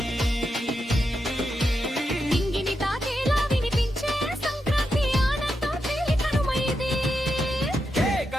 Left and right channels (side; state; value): both; normal; correlation 0.86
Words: ఇంగిని తాకేలా వినిపించే సంక్రాంతి ఆనందం తేలి కనుమైది